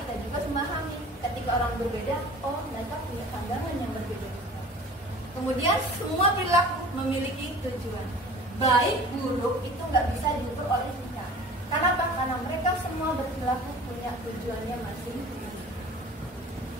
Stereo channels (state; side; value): normal; both; correlation 0.43